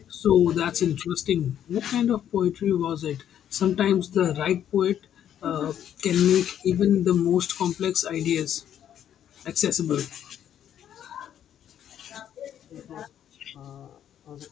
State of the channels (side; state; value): right; quieter; 10.1 dB